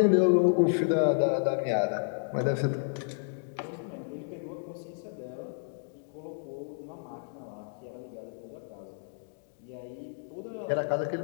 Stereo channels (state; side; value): silent; right; digital silence